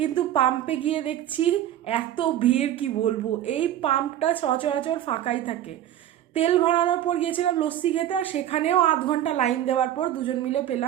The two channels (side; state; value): left; quieter; 11.8 dB